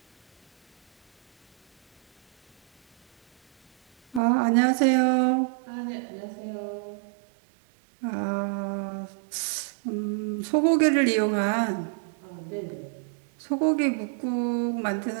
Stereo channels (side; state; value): left; drops out; at 4.2 s